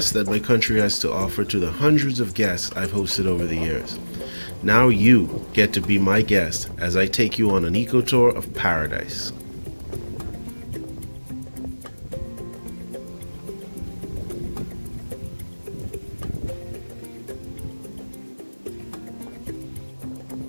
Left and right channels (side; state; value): both; inverted; correlation -1.00